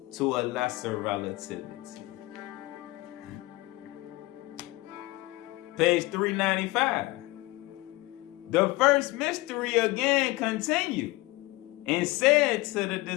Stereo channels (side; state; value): right; quieter; 21.0 dB